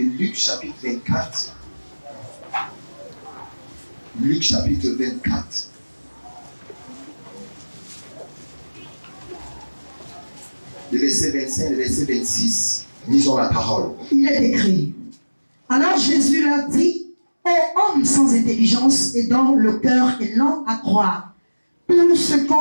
Luc chapitre 24. Luc chapitre 24. Le verset 25, le verset 26. Lisons la parole. Il est écrit. Alors Jésus leur dit, ô hommes sans intelligence et dont le cœur est lent à croire tout ce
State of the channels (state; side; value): inverted; both; correlation -1.00